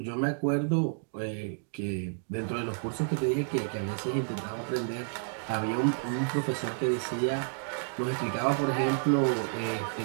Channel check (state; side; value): silent; left; digital silence